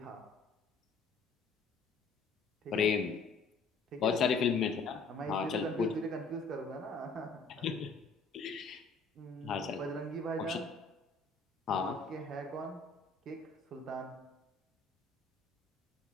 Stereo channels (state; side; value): quieter; right; 4.2 dB